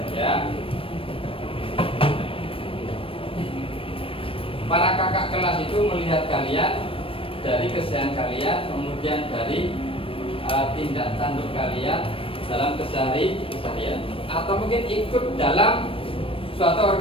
ya, para kakak kelas itu melihat kalian dari keseharian kalian, kemudian dari tindak tanduk kalian dalam keseharian, atau mungkin ikut dalam suatu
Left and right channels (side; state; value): right; late; 0.26 ms